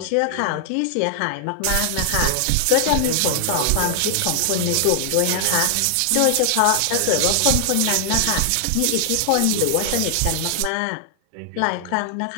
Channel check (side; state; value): both; different; correlation 0.00